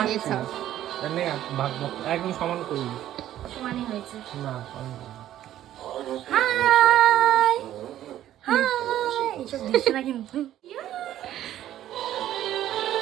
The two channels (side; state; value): left; quieter; 12.5 dB